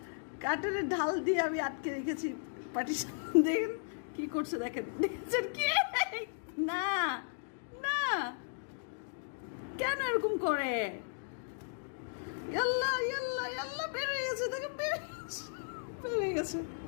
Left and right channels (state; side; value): silent; right; digital silence